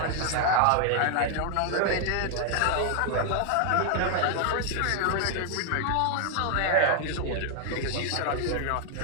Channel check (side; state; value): both; different; correlation 0.00